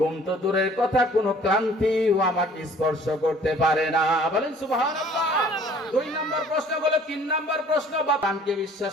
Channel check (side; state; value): both; normal; correlation 0.54